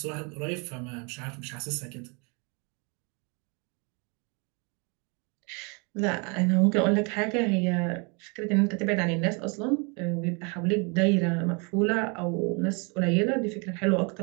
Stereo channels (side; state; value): left; quieter; 32.3 dB